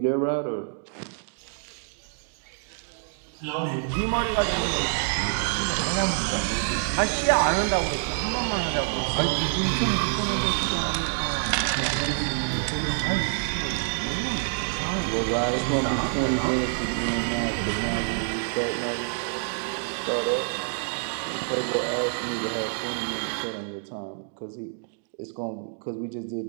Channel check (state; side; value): silent; left; digital silence